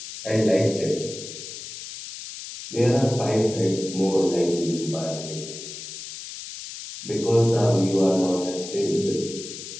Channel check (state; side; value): noise; left; hiss, 11 dB below the sound